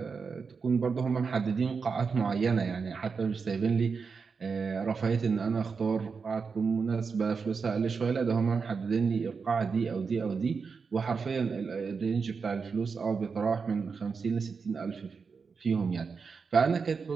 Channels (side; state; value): left; quieter; 5.3 dB